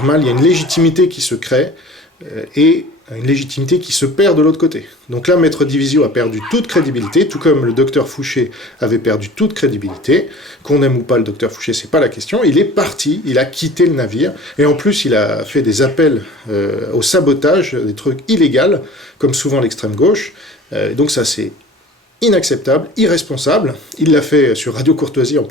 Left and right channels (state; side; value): normal; both; correlation 0.44